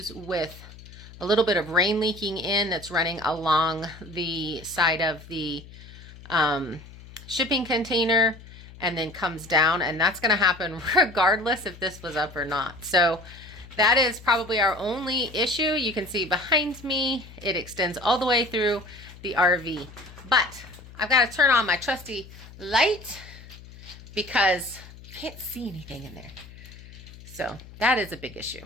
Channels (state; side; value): noise; left; hum, 18 dB below the sound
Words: with a little bit of rain leaking in that's running along the side of the shipping container and then comes down, and that's going to happen regardless if this was up or not. So that is probably our only issue. You can see behind me, it extends all the way through the RV. But I've got to turn on my trusty light because I can't see anything in there. So that is a big issue.